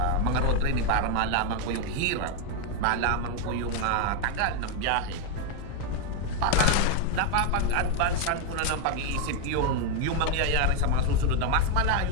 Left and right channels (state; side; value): different; both; correlation 0.01